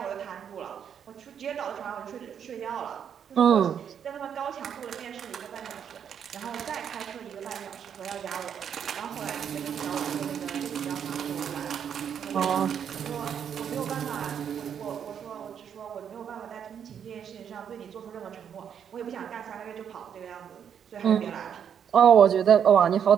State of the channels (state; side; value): quieter; left; 8.2 dB